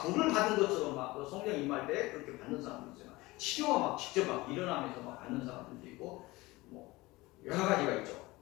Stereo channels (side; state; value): right; quieter; 20.9 dB